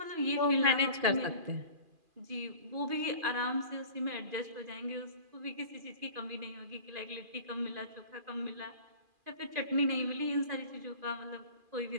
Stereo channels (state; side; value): late; left; 2.4 ms